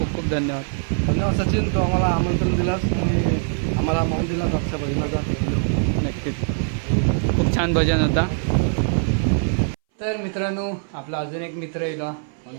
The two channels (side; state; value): left; silent; 61 dB below the other